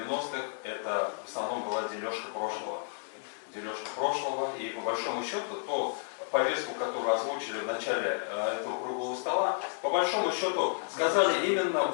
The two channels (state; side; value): silent; right; digital silence